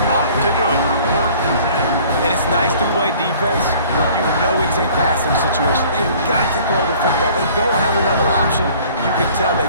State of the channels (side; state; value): both; inverted; correlation -0.52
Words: ought to do it. And it's nice to play defense when you know it's a passing situation. They've got to throw the football. They don't have another option. You can tell they